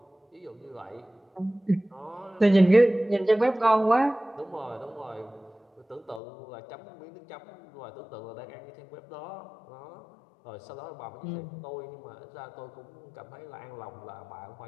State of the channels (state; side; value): drops out; right; at 6.2 s